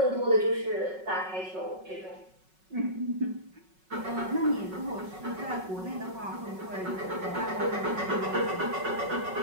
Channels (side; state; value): left; late; 5.4 ms